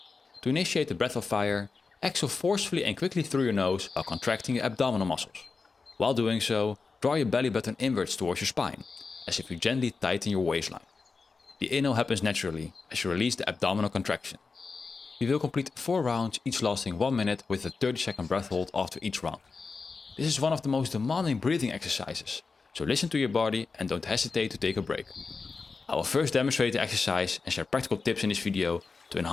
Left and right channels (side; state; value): right; quieter; 4.5 dB